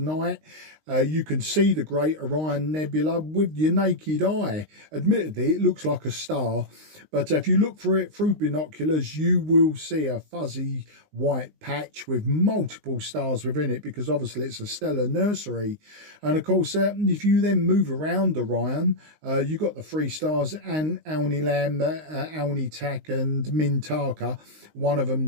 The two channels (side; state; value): left; late; 19 ms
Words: you can see the Great Orion Nebula with your naked eye. Admittedly, it looks like a star, but if you look for it through binoculars, you will see a fuzzy white patch with multiple stars within it, because obviously it's a stellar nursery. And of course, if you then move around Orion, you've got the 3 stars, and Alnilam, Alnitak and Mintaka. One of